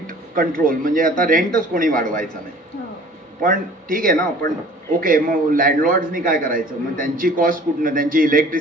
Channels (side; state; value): both; normal; correlation 0.48